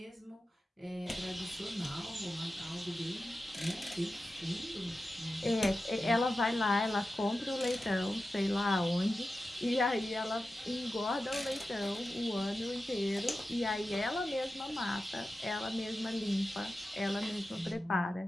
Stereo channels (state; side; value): normal; both; correlation 0.93